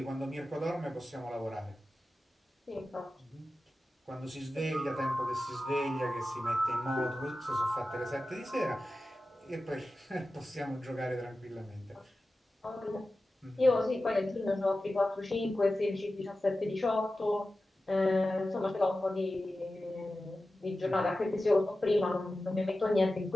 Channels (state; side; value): normal; both; correlation 0.94